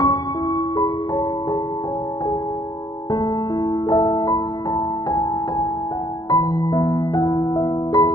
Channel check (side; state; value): right; late; 0.19 ms